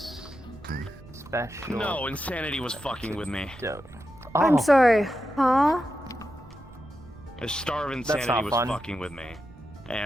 special. No, insanity was fucking with me. I'm sorry, huh? A starve That's insanity not was fun. fucking with me.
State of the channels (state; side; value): noise; right; rumble, 20 dB below the sound